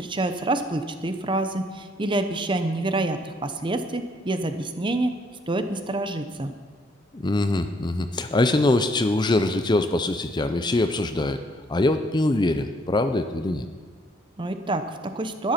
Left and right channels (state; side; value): normal; both; correlation 0.67